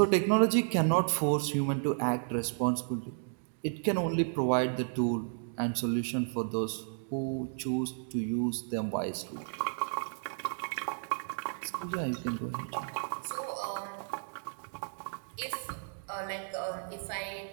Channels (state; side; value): silent; left; digital silence